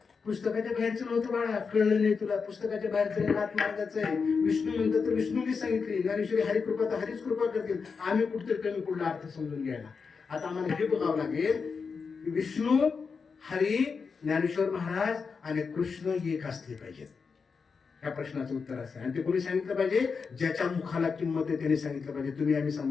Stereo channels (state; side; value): quieter; right; 5.3 dB